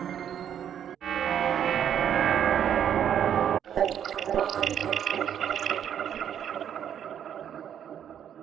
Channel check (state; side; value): quieter; left; 9.3 dB